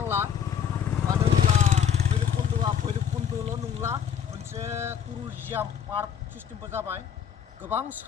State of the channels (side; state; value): right; quieter; 8.6 dB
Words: मानो होनब्ला भैरबकुन्द'आ भैरबकुन्द'ल' नंला मोनसे टुरिजियाम पार्क सिस्टेमबो जाबाय गोबां